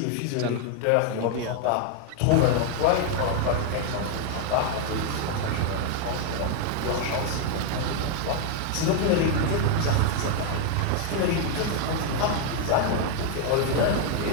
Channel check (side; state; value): both; different; correlation 0.00